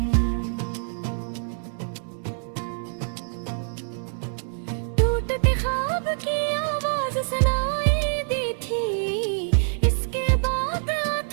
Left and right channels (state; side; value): silent; left; digital silence